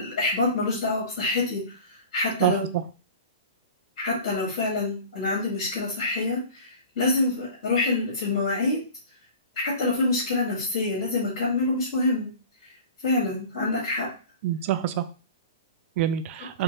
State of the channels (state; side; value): inverted; both; correlation -0.38